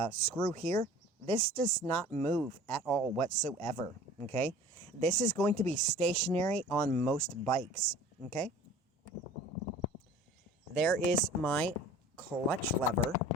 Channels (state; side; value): normal; both; correlation 0.44